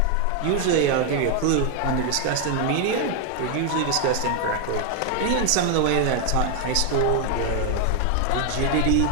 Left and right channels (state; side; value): different; both; correlation 0.01